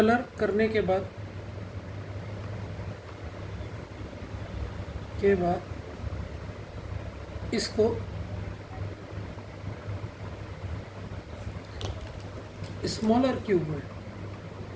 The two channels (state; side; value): identical; both; correlation 1.00